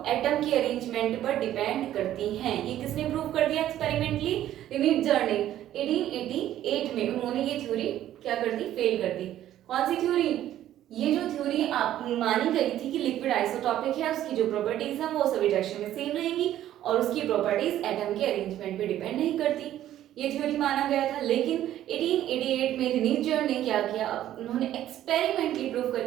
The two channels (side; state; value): left; quieter; 12.4 dB